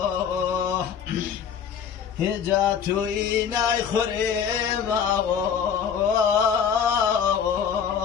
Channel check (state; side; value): quieter; right; 7.6 dB